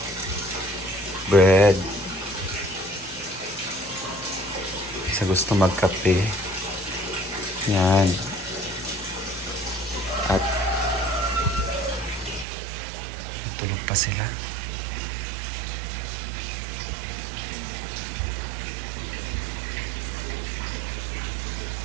bread. Sa gusto magkape. Yan. At tulog pa sila.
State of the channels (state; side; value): drops out; left; at 12.5 s